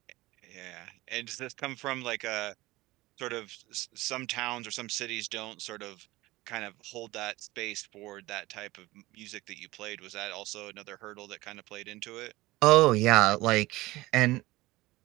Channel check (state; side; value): quieter; left; 19.3 dB